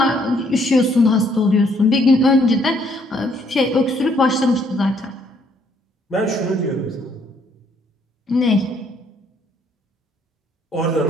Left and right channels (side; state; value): both; normal; correlation 0.67